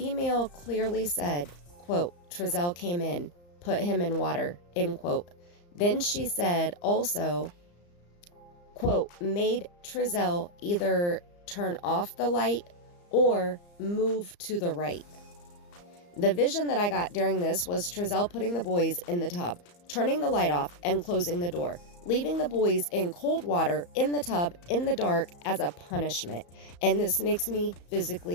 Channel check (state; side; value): late; right; 34 ms